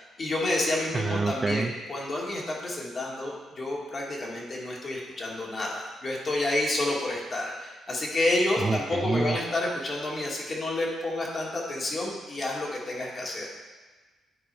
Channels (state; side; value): normal; both; correlation 0.85